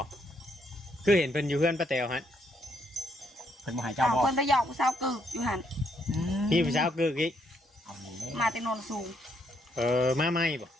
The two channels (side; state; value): both; normal; correlation 0.73